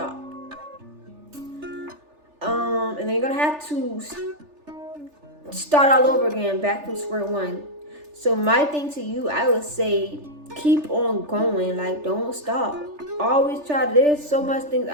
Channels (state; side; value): late; left; 3.4 ms